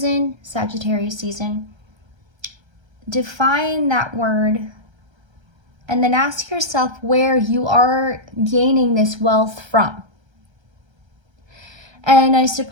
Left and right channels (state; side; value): late; left; 1.3 ms